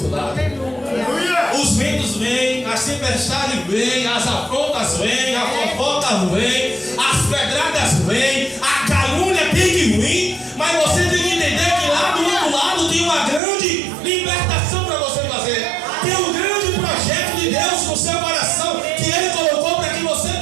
lado. Aleluia. Os ventos vêm, as tempestades vêm, as afrontas vêm, a fofoca vem, as pedradas vêm, a calúnia tem que vir, mas você tem que entender que lá do outro lado tem uma grande libertação para você fazer. Tem um grande projeto de Deus no seu coração que Ele colocou para que você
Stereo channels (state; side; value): drops out; left; at 13.4 s